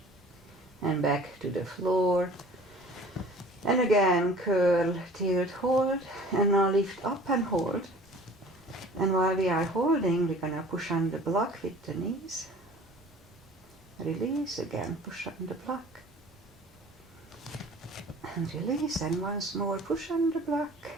And back to the floor. And again, curl, tilt, hold. And now lift up and hold. And while we are holding, we're going to push on the block with the knees. Release again, push on the block. And release, and once more push on the block.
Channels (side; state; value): both; normal; correlation 0.47